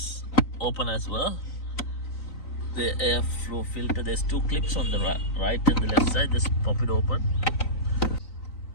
open as well. The airflow filter, there's two clips on the right and the left side. Just pop it open.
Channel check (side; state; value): right; late; 3.9 ms